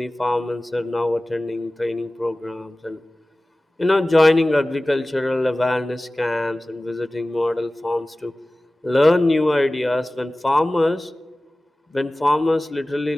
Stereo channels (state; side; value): normal; both; correlation 0.97